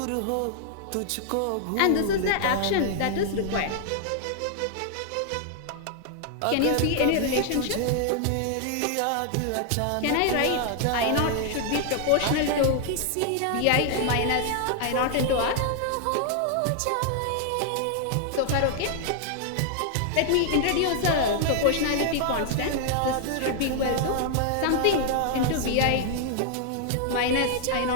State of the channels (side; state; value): both; different; correlation 0.00